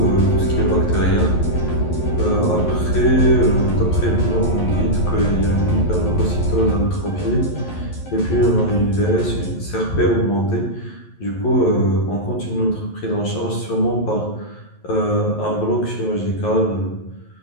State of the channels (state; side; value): late; right; 11 ms